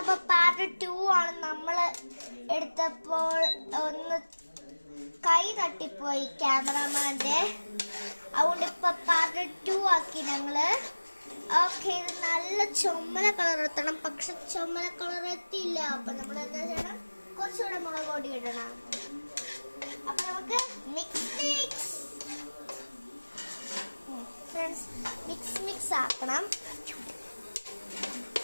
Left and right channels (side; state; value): both; inverted; correlation -1.00